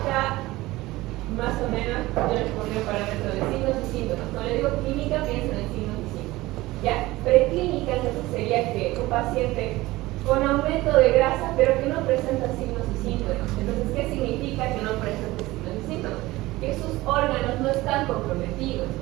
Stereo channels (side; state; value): left; quieter; 18.9 dB